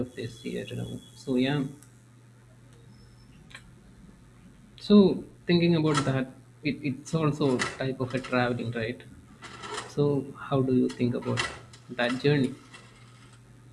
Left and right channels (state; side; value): identical; both; correlation 1.00